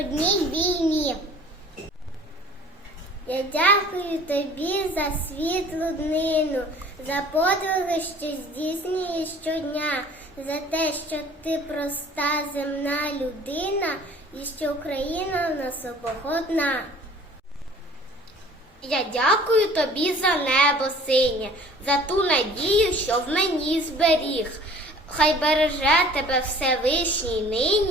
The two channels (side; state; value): both; normal; correlation 0.50